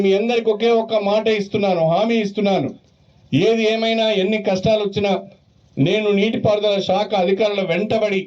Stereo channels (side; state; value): both; identical; correlation 1.00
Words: మీ అందరికి ఒకే ఒక్క మాట ఇస్తున్నాను, హామీ ఇస్తున్నాను. ఏది ఏమైనా ఎన్ని కష్టాలు వచ్చినా నేను నీటిపారుదల శాఖ అధికారుల వెంటబడి